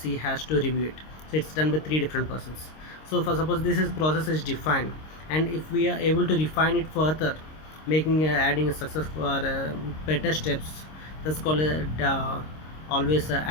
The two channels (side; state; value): right; late; 26 ms